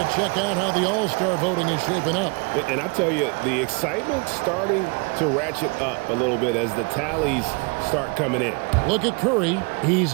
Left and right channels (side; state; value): left; quieter; 31.3 dB